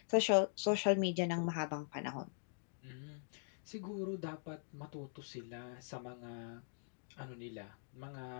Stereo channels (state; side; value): silent; right; digital silence